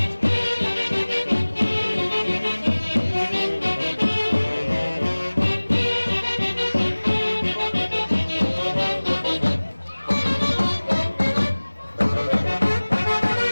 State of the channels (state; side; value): inverted; both; correlation -1.00